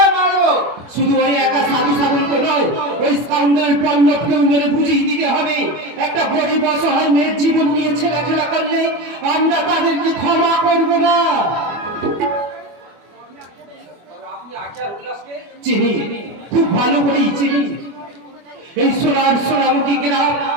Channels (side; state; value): left; late; 24 ms